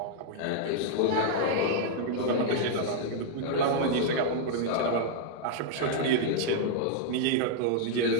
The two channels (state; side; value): different; both; correlation -0.01